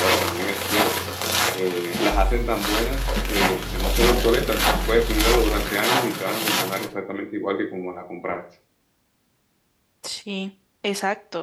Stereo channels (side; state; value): both; identical; correlation 1.00